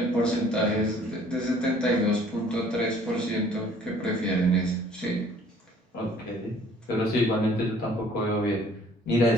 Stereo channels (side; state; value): both; normal; correlation 0.56